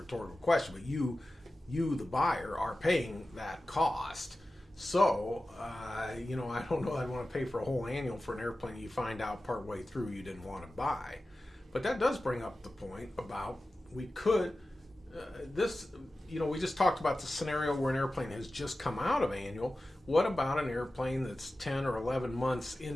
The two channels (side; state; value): both; normal; correlation 0.95